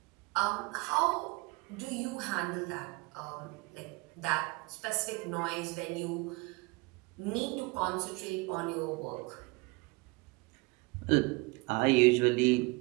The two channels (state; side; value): quieter; left; 26.1 dB